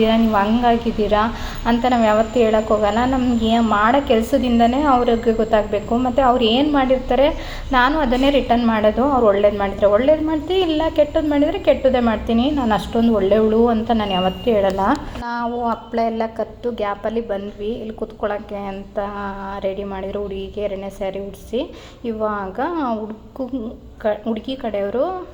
ನೀವು ಹಂಗಾಗಿದ್ದೀರಾ ಅಂತ ನಾವು ಯಾವತ್ತೂ ಹೇಳೋಕ್ಕೋಗಲ್ಲ. ನಮಗೆ ಮಾಡೋ ಕೆಲಸದಿಂದನೇ ಅವ್ರಿಗೆ ಗೊತ್ತಾಗಬೇಕು. ಮತ್ತು ಅವ್ರು ಏನು ಮಾಡಿರ್ತಾರೆ ನಾನು ಅದನ್ನೇ ರಿಟರ್ನ್ ಮಾಡೋದು. ಅವ್ರು ಒಳ್ಳೇದು ಮಾಡಿದರೆ ಒಳ್ಳೇದು ಮಾಡ್ತೀನಿ, ಇಲ್ಲ ಕೆಟ್ಟದ್ದು ಮಾಡಿದರೆ ಕೆಟ್ಟದ್ದೇ ಮಾಡ್ತೀನಿ. ನಾನು ಅಷ್ಟೊಂದು ಒಳ್ಳೆಯವಳು ಅಂತ ನಾನು ಯಾವತ್ತೂ ಹೇಳಲ್ಲ. ನಾವು ಹಪ್ಪಳ ಎಲ್ಲ ಕತ್ತು ಗ್ಯಾಪಲ್ಲಿ ಬಂದ್ವಿ. ಇಲ್ಲಿ ಕೂತ್ಕೊಳ್ಳೋಕ್ಕೆ ಅಂತ ರೆಡಿ ಮಾಡಿದ್ರು. ಹುಡುಗಿಗೆ 2ನೇ ಸ್ಯಾರಿ ಉಡಿಸಿ ಇವಾಗ ಹುಡುಗಿ ಕಡೆಯವರು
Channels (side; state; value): both; identical; correlation 1.00